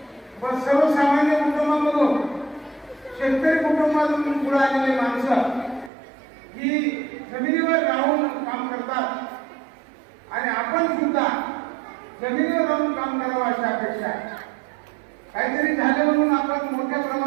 पण सर्वसामान्य कुटुंबामधून शेतकरी कुटुंबातून पुढे आलेली माणसं ही जमिनीवर राहून काम करतात आणि आपण सुद्धा जमिनीवर राहून काम करावं अशी अपेक्षा आहे. काहीतरी झालं म्हणून आपण मोठ्या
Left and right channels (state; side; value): drops out; left; at 5.9 s